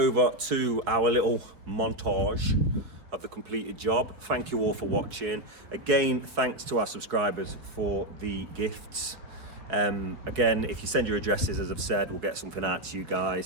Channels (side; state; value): left; late; 4.7 ms